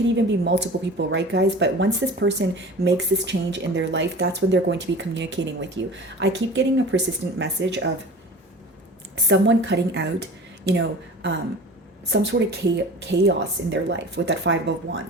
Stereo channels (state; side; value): normal; both; correlation 0.38